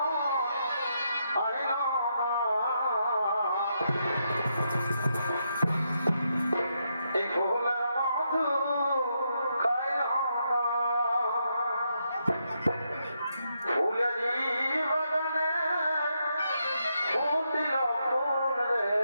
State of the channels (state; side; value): inverted; both; correlation -0.80